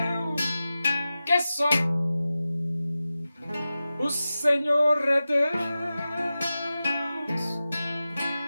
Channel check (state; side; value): inverted; both; correlation -0.94